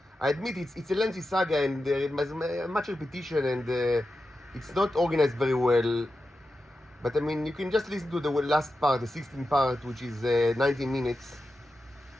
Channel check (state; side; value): normal; both; correlation 0.91